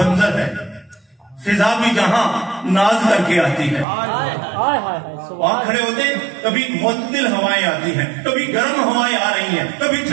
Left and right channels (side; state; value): left; drops out; at 3.9 s